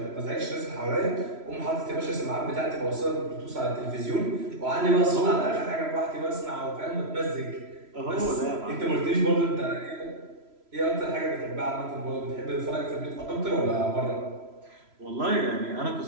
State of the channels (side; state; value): left; late; 3.0 ms